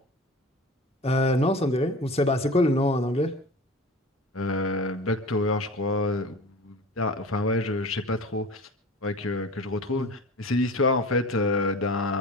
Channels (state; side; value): normal; both; correlation 0.36